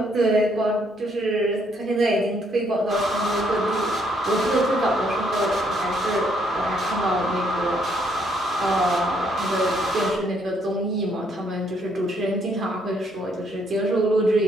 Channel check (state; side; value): normal; both; correlation 0.70